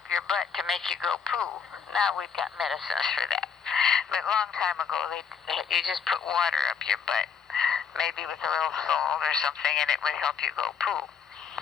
your butt to make you go poo. Now we've got medicines for that. But a long time ago, you just put water up your butt, maybe with a little salt or something, and it would help you go poo.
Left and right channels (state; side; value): quieter; right; 6.7 dB